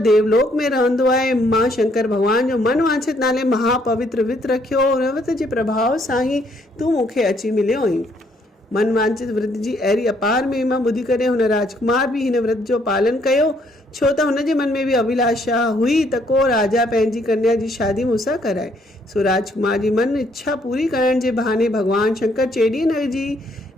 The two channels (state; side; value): normal; both; correlation 0.68